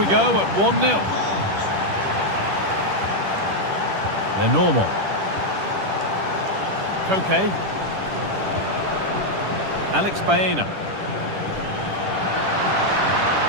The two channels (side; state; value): left; late; 10 ms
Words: go at 1-0. Lenormand. Koke. Alex Baena.